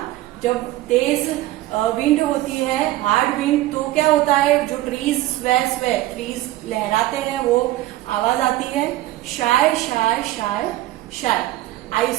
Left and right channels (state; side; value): quieter; left; 16.1 dB